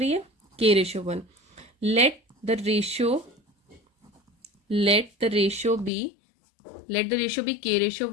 है, k ratio 1। Let the ratio be k ratio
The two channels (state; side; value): drops out; right; at 5.9 s